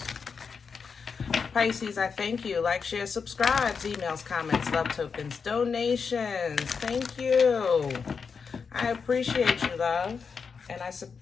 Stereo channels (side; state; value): right; quieter; 5.7 dB